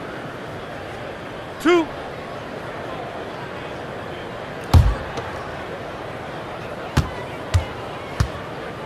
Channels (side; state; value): both; identical; correlation 1.00